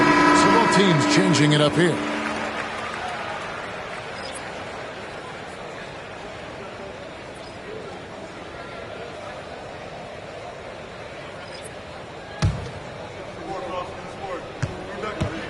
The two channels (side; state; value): both; identical; correlation 1.00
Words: So both teams changing it up here.